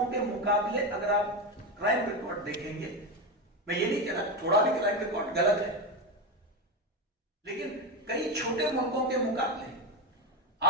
के मुकाबले अगर आप क्राइम रिकॉर्ड देखेंगे, मैं ये नहीं कह रहा थोड़ा भी क्राइम रिकॉर्ड गलत है, लेकिन कई छोटे मुल्कों के मुकाबले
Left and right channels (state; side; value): normal; both; correlation 0.14